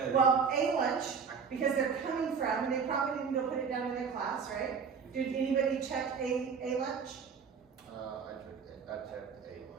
well, A lunch, because they're coming from, and they probably didn't go put it down in their class, right? Did anybody check A lunch? I checked A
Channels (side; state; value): left; quieter; 6.1 dB